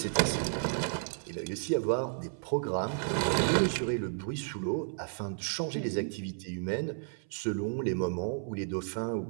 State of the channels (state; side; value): silent; left; 56 dB below the other